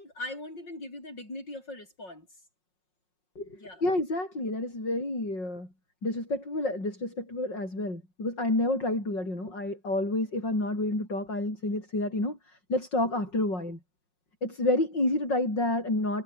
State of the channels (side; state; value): right; late; 5.5 ms